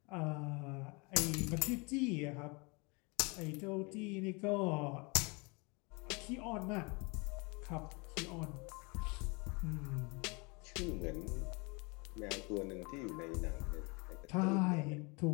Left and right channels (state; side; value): quieter; right; 29.4 dB